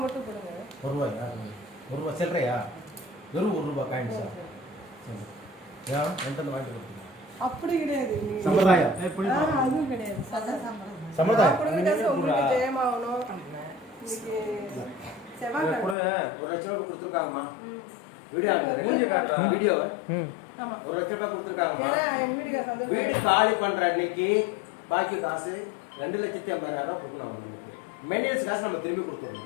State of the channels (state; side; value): drops out; right; at 16.0 s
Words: மட்டும் கொடுங்க. ₹1 சில்லறையா? வெறும் ₹1 காயின்ஸா? ஏன் என்கிட்ட வாங்கி கொடுத்தீங்க? அப்படி கிடையாது. சம்பிரதாயம் அதுவும் கிடையாது. சம்பிரதாயம் உங்களுக்கு ஜெயமாகணும். இன்னைக்கு செவ்வாய் கூட ₹1,00,000 கொடுத்துருக்காங்கம்மா. வீடியோ ஆமா. ₹1,00,000 கொடுத்துருக்காங்கம்மா. வீடு வீடு காலி பண்ற அன்னைக்கு பாக்கி காசு ₹2,50,000 கொடுக்கணும் அவங்களுக்கு. மெயின்டெனன்ஸ் காசு நம்ம திரும்பி